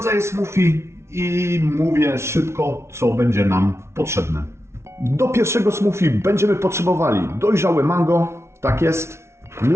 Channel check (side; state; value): left; late; 0.13 ms